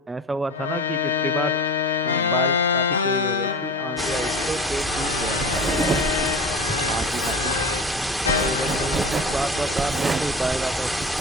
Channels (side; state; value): both; normal; correlation 0.33